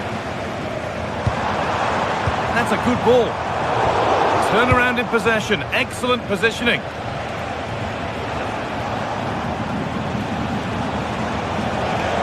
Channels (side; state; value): both; identical; correlation 1.00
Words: That's a good ball. Turn around in possession. Excellent positioning.